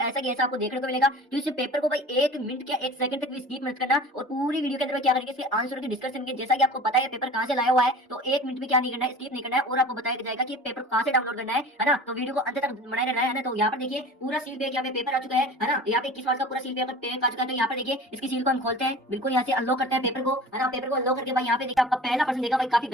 ऐसा की ऐसा आपको देखने को मिलेगा। तो इस पेपर को भाई 1 मिनट या 1 सेकंड तक भी स्किप मत करना और पूरी वीडियो के अंदर क्या करेंगे इसके आंसर की डिस्कशन करेंगे। जैसा कि आपको पता है पेपर कहाँ से लाया हुआ है, तो 1 मिनट भी क्या नहीं करना है, स्किप नहीं करना है और आपको बताया जाएगा कि पेपर कहाँ से डाउनलोड करना है ना। तो वीडियो को अंत तक बनाए रहना है ना। तो यहाँ पर देखिए पूरा सील पे यहाँ पे पेपर आ चुका है ना। यहाँ पे 21 मार्च का पूरा सील पेपर आ चुका है। तो यहाँ पर देखिए इसकी सील को हम खोलते हैं, बिल्कुल यहाँ से अनलॉक करते हैं पेपर को है ना। पेपर को अनलॉक करके भाई यहाँ पे देखिए आपका पहला प्रश्न देखा भाई काफी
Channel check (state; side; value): normal; both; correlation 0.39